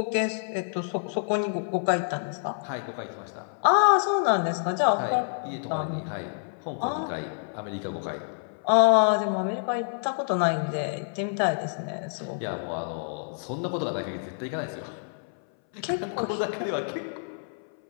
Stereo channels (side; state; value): right; silent; 60 dB below the other